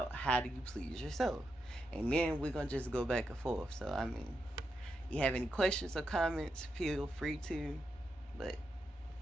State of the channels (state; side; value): normal; both; correlation 0.85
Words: how do you please yourself. And then we're gonna just go back and forth. So I mean, you have any questions or comments, feel free to. But